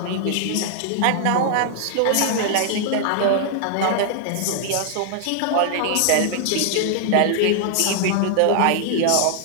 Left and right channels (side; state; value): both; different; correlation 0.00